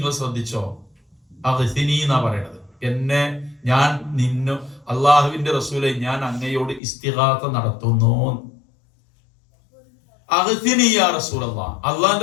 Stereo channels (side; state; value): right; drops out; at 6.8 s